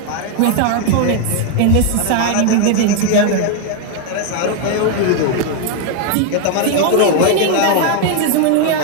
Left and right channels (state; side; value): different; both; correlation 0.01